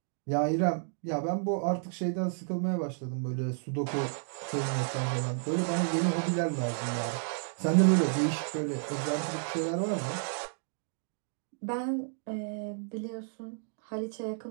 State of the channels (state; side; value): silent; left; digital silence